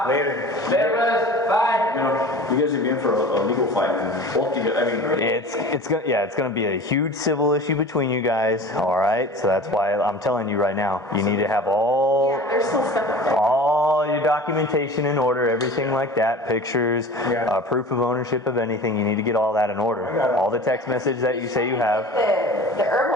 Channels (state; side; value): normal; both; correlation 0.39